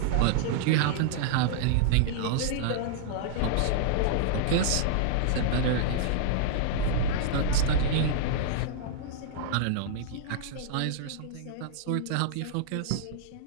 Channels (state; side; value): different; both; correlation -0.01